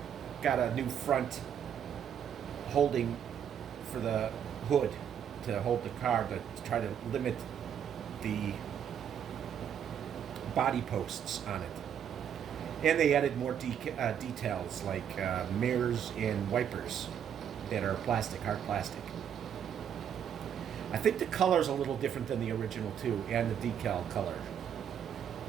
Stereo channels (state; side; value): quieter; left; 8.7 dB